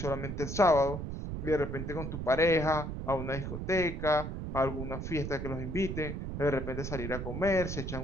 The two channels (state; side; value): noise; right; rumble, 5 dB below the sound